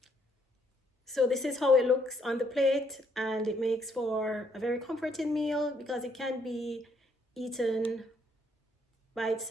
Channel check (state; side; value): normal; both; correlation 0.70